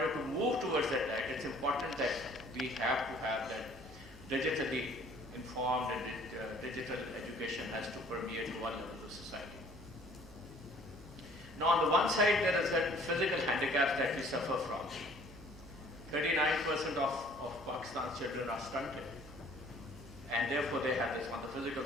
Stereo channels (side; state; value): right; noise; hum, 18 dB below the sound